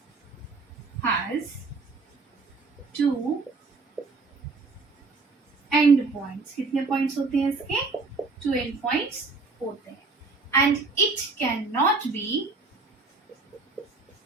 two end points. कितने पॉइंट्स होते हैं इसके? 2 एंड पॉइंट्स होते हैं. And it can not be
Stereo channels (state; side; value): quieter; left; 3.9 dB